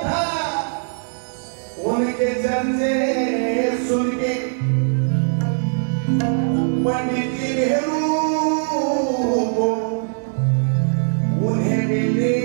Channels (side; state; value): left; silent; digital silence